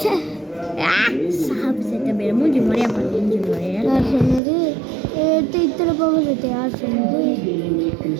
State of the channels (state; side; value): drops out; left; at 4.4 s